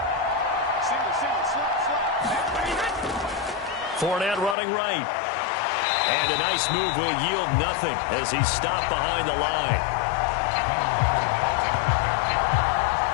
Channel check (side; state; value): right; drops out; at 4.5 s